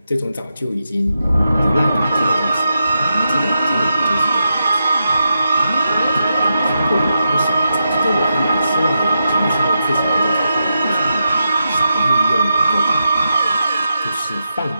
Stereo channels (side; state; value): both; inverted; correlation -0.86